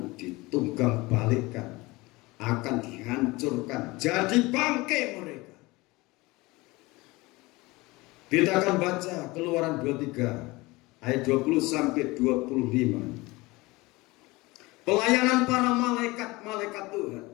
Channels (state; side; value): quieter; right; 22.2 dB